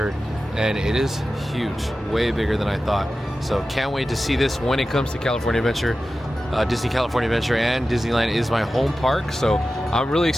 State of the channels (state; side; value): normal; both; correlation 0.94